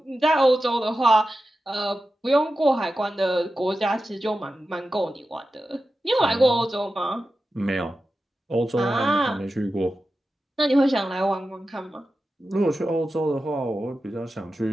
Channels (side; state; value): both; normal; correlation 0.92